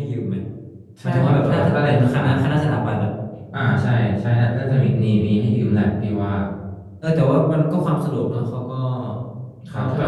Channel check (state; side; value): identical; both; correlation 1.00